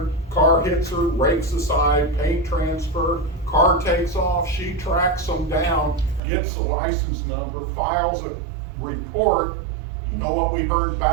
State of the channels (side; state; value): left; drops out; at 6.2 s